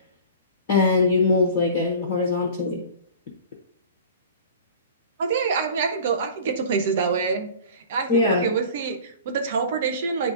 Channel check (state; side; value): inverted; both; correlation -0.40